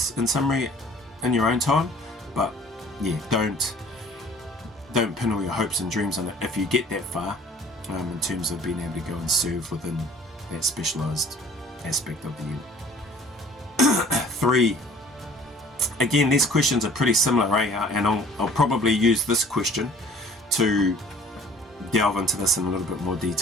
in summary, in your own time, but yeah, don't pin all your hopes and dreams on it if you get that far, in terms of being able to go and serve within that specialised aspect of the unit. 3. Again, these questions are pretty similar, and I'll probably use this question to delve into this in a little bit more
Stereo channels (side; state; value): both; normal; correlation 0.52